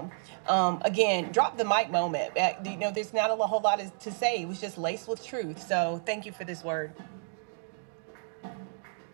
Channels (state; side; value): silent; left; digital silence